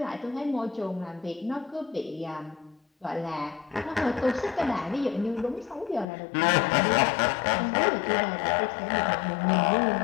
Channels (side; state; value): right; drops out; at 6.1 s